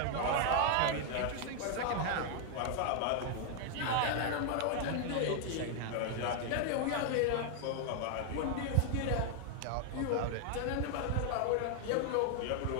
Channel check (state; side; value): different; both; correlation 0.00